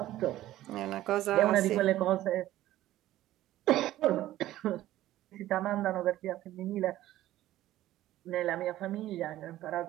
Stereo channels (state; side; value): quieter; left; 14.6 dB